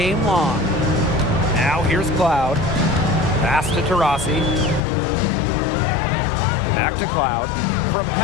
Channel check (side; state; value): right; drops out; at 4.8 s